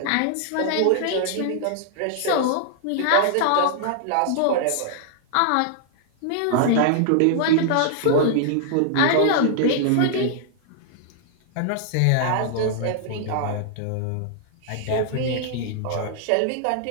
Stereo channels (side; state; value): both; different; correlation -0.01